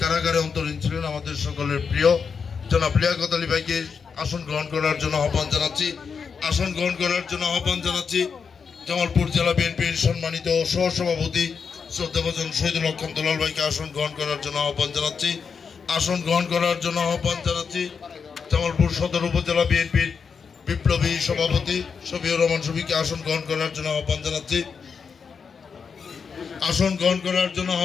কারাগারে অন্তরীণ ছিলেন, আমাদের সকলের প্রিয় জনাব লিয়াকত আলী ভাইকে আসন গ্রহণ করার জন্য আহ্বান জানাচ্ছি। আসন গ্রহণ করার জন্য আহ্বান জানাচ্ছি জামালপুর জেলা বিএনপির সম্মানিত সহসভাপতি শ্রদ্ধাভাজন শহীদুল হক খান দুলাল ভাইকে আসন গ্রহণ করার জন্য আহ্বান জানাচ্ছি। আসন গ্রহণ করার জন্য আহ্বান জানাচ্ছি জামালপুর সদর উপজেলা বিএনপির বিপ্লবী সভাপতি শফিউর রহমান শফিকে আসন গ্রহণ করার জন্য আহ্বান জানাচ্ছি। আসন গ্রহণ করার জন্য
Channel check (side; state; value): right; quieter; 5.9 dB